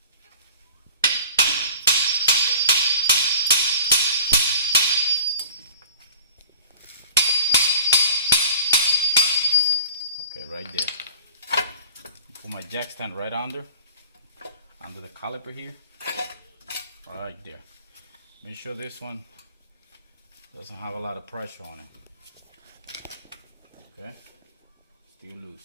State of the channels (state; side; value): inverted; both; correlation -0.43